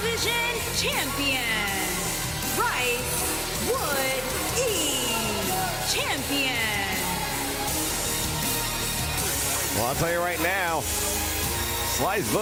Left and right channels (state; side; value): identical; both; correlation 1.00